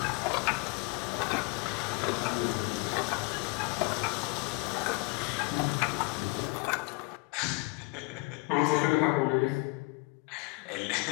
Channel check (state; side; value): quieter; right; 27.1 dB